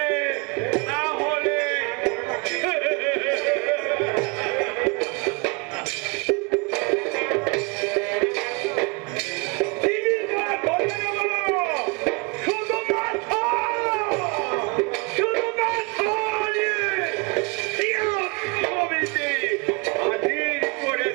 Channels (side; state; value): left; quieter; 29.4 dB